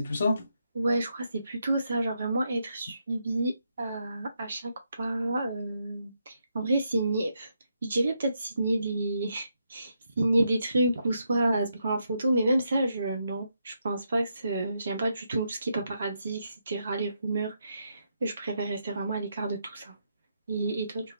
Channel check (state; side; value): inverted; both; correlation -0.80